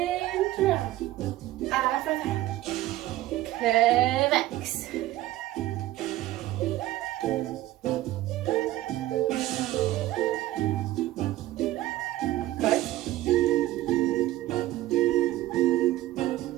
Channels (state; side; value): quieter; left; 15.6 dB